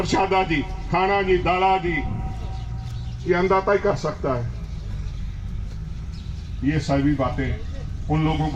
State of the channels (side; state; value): both; identical; correlation 1.00